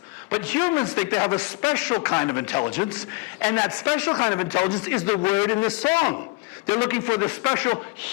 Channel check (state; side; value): quieter; right; 25.9 dB